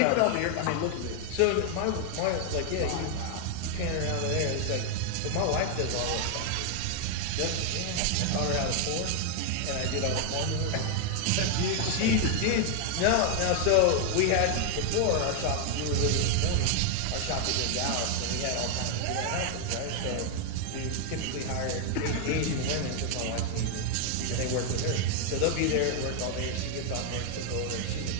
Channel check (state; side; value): different; both; correlation 0.00